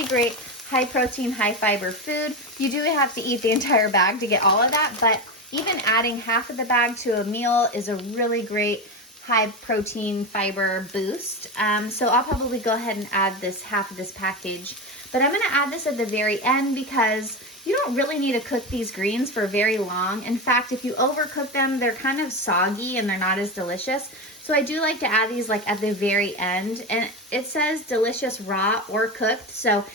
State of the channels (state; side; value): normal; both; correlation 0.19